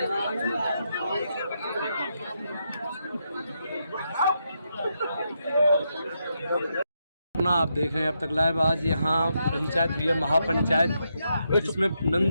आप देख रहे हैं अब तक लाइव। आज यहाँ पंचायत हुई है, महापंचायत, जिसमें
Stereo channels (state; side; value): inverted; both; correlation -0.82